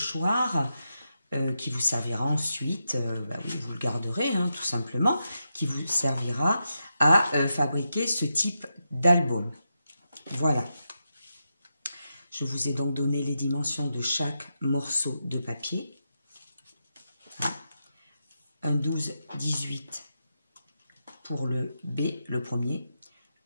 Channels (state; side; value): inverted; both; correlation -0.86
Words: qui vous servira ensuite, vous le garderez tout simplement, qui vous servira à fabriquer ce type d'album. Voilà. Je vous ai donc donné les dimensions de chaque morceau de papier. Un 12-18 pour le B, le premier.